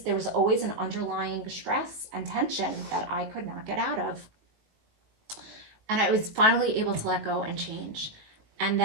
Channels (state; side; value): late; left; 19 ms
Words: an underlying stress and tension that I could not get out of. And I was finally able to let go and change. And